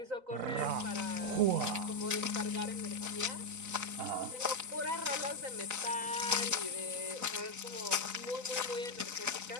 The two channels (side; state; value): left; late; 4.0 ms